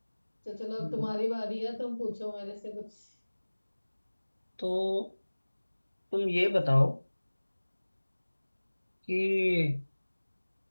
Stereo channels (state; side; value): inverted; both; correlation -1.00